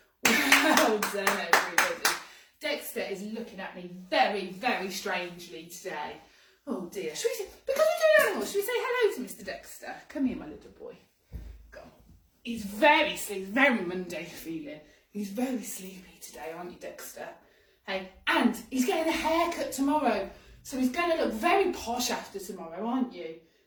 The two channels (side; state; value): both; identical; correlation 1.00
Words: Well done, everybody. Dexter is looking at me very, very strangely today. Oh dear. Should we say, because we're doing animals, should we say hello to Mr. Dexter? Come here, my little boy. Go on. He's very sleepy, very Monday feeling. He's very sleepy today, aren't you, Dexter? Hey, and he's getting a haircut tomorrow, so he's going to look very posh after tomorrow, aren't you?